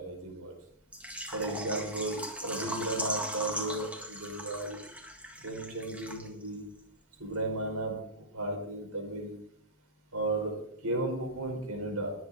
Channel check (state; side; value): normal; both; correlation -0.19